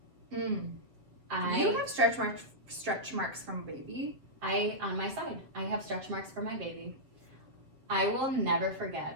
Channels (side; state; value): left; late; 7.6 ms